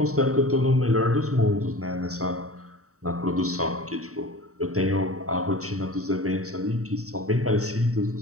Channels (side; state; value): left; late; 0.65 ms